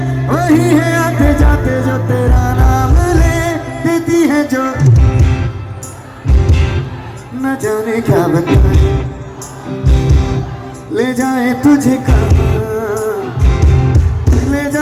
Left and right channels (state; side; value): identical; both; correlation 1.00